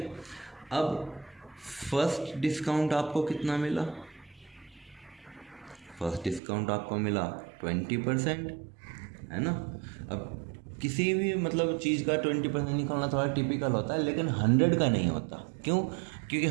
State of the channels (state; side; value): drops out; left; at 6.4 s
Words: अब फर्स्ट डिस्काउंट आपको कितना मिला, फर्स्ट डिस्काउंट आपको मिला 20%, है ना। अब किसी भी मतलब चीज़ का 20% निकालना थोड़ा टिपिकल होता है, लेकिन 100 का नहीं होता। क्यों? क्योंकि